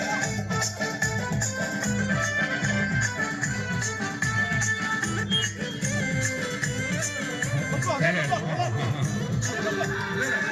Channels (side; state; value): both; identical; correlation 1.00